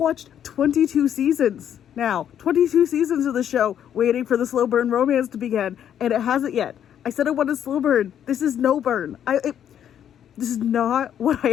22 seasons now. 22 seasons of the show waiting for the slow burn romance to begin, and it hasn't yet. I said I wanted slow burn. This is no burn. This is not what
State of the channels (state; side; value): quieter; right; 9.6 dB